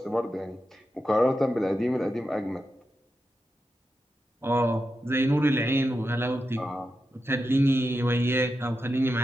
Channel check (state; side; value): normal; both; correlation 0.88